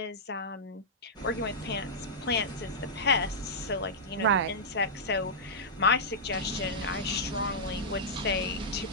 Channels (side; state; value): both; normal; correlation -0.11